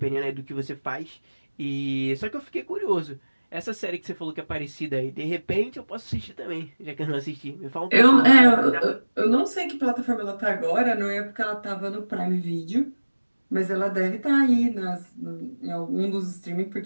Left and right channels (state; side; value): inverted; both; correlation -1.00